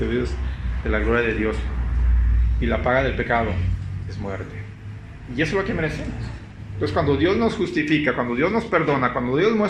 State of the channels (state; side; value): identical; both; correlation 1.00